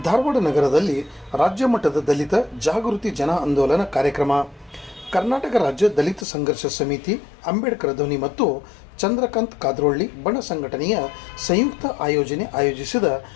ಧಾರವಾಡ ನಗರದಲ್ಲಿ ರಾಜ್ಯ ಮಟ್ಟದ ದಲಿತ ಜಾಗೃತಿ ಜನ ಆಂದೋಲನ ಕಾರ್ಯಕ್ರಮ. ಕರ್ನಾಟಕ ರಾಜ್ಯ ದಲಿತ ಸಂಘರ್ಷ ಸಮಿತಿ, ಅಂಬೇಡ್ಕರ್ ಧ್ವನಿ ಮತ್ತು ಚಂದ್ರಕಾಂತ್ ಕಾದ್ರೋಳ್ಳಿ ಬಣ ಸಂಘಟನೆಯ ಸಂಯುಕ್ತ ಆಯೋಜಿಸಿದ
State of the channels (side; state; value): right; drops out; at 6.2 s